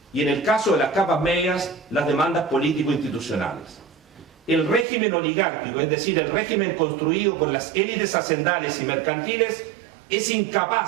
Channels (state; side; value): drops out; left; at 4.9 s